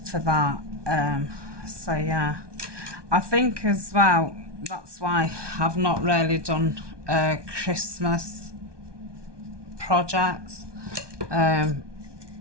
that. So yeah, I think as well that's why I've not really done Christmas projects, because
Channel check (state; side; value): late; left; 1.2 ms